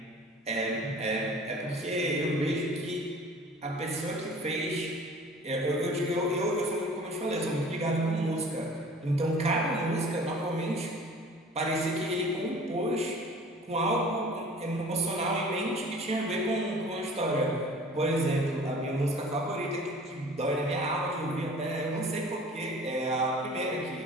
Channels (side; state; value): both; normal; correlation 0.46